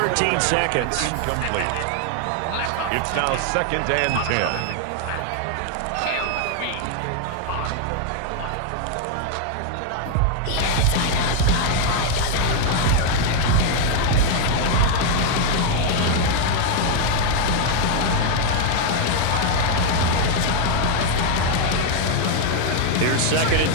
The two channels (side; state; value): both; different; correlation 0.00